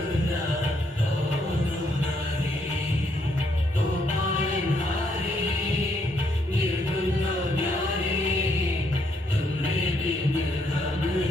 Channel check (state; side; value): normal; both; correlation 0.73